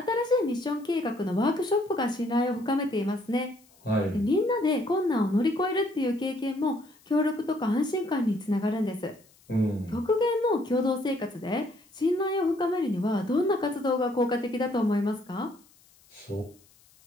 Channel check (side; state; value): left; noise; hiss, 30 dB below the sound